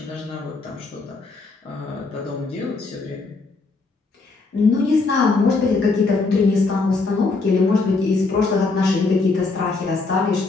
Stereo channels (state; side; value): quieter; right; 3.9 dB